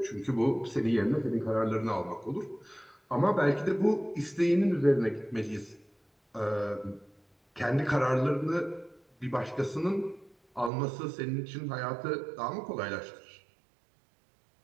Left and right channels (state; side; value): drops out; left; at 10.7 s